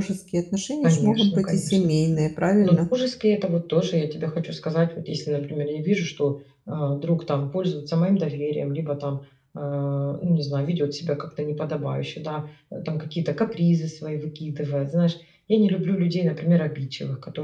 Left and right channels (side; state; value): both; identical; correlation 1.00